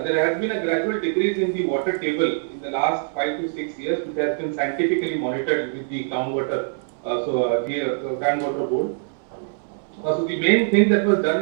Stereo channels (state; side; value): silent; left; 63 dB below the other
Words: has been a gradual decrease in the water table in the last 5 to 6 years, which has been scientifically monitored with the groundwater, groundwater board. So the main thing that was done